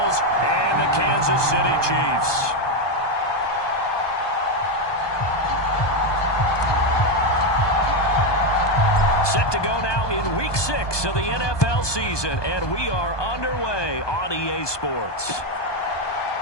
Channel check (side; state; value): right; late; 1.2 ms